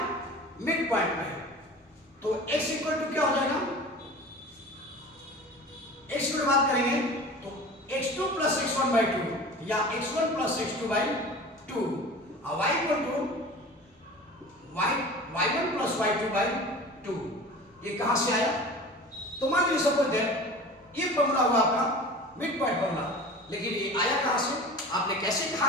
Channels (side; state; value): both; normal; correlation 0.38